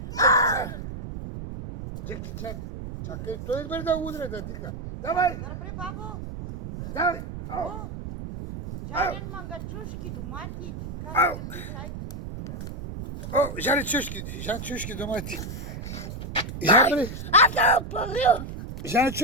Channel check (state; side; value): noise; right; rumble, 8 dB below the sound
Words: Джеки Чан. Чакай, той избере да удре, да дика. Давай! Добре, бабо. Давай! О, жарен мангачушки, домати, Ау. така. О, Жан чушки домати. Жан бре, Аз нямам пари. Жан